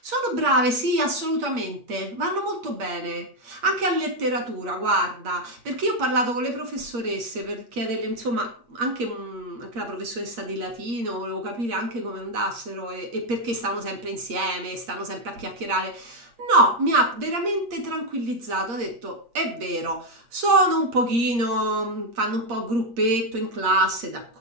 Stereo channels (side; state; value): left; late; 8.5 ms